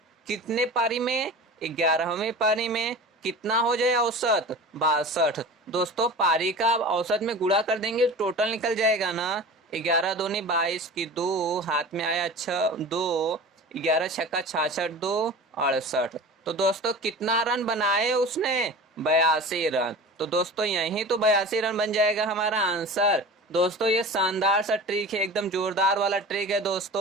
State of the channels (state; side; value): normal; both; correlation 0.35